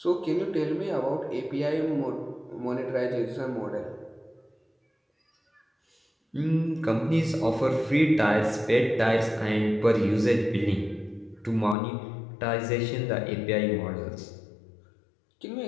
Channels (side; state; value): right; drops out; at 11.8 s